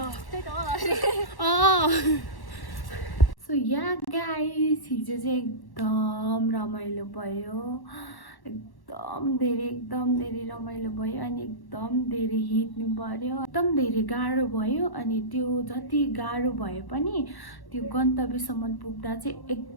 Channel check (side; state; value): right; late; 1.1 ms